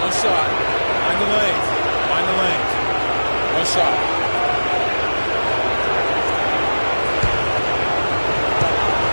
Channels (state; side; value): inverted; both; correlation -1.00